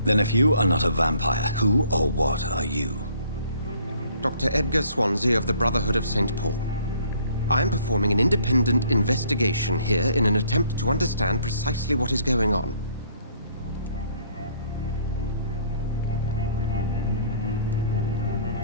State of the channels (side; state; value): both; inverted; correlation -0.60